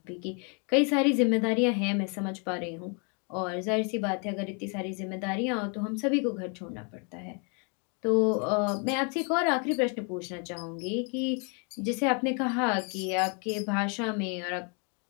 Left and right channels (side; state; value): right; quieter; 36.7 dB